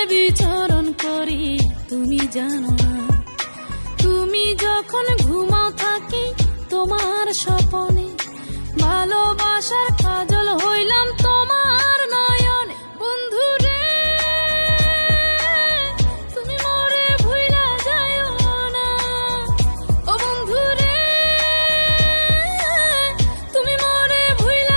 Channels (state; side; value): inverted; both; correlation -1.00